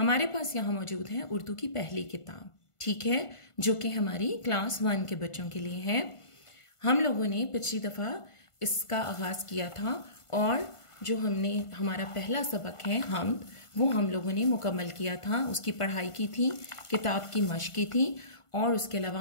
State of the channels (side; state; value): right; late; 1.5 ms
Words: पास यहाँ मौजूद है उर्दू की पहली किताब, ठीक है, जो कि हमारी क्लास 1 के बच्चों के लिए है। हम लोगों ने पिछली दफ़ा इसका आगाज़ किया था और जो हमने हमारा पहला सबक है हम्द, वो हम लोगों ने मुकम्मल किया था। उसकी पढ़ाई की थी, किताब की मश्क की थी और उसके अलावा